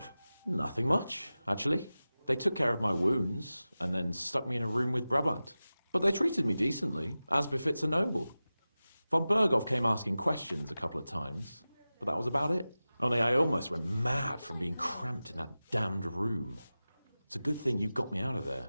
Nothing much, actually. They took care of my wounds, and then stuck me in a room with Brabant. But they treated me decently, as befits a noble. Von Berghoff came asking questions a couple of times, but that was about it. Only I almost went mad from being cramped in that damned room. It's a good thing you got me out of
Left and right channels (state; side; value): inverted; both; correlation -0.96